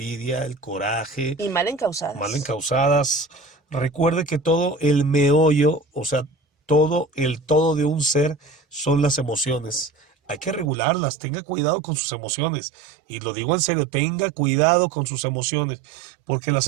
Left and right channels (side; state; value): left; drops out; at 10.7 s